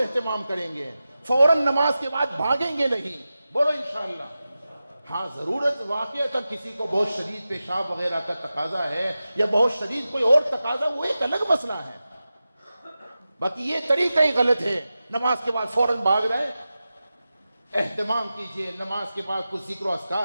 کریں گے، فوراً نماز کے بعد بھاگیں گے نہیں. بولو انشاءاللہ. ہاں ضرورت واقعہ کسی کو بہت شدید پیشاب وغیرہ کا تقاضا ہے یا بہت شدید کوئی اور تقاضا، وہ ایک الگ مسئلہ ہے، باقی یہ طریقہ ہی غلط ہے، نماز کے بعد فوراً بھاگ رہے۔ اہتمام کیجئے، نماز کے بعد کچھ ذکر و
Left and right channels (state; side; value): inverted; both; correlation -0.94